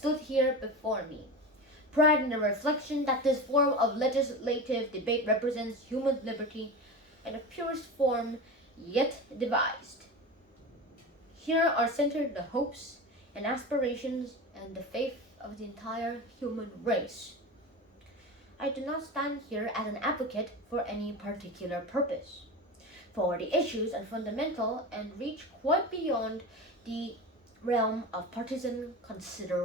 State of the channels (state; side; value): normal; both; correlation 0.27